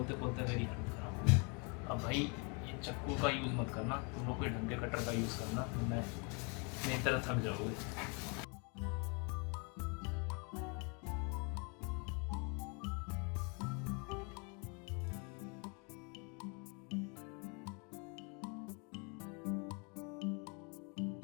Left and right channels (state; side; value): quieter; right; 34.0 dB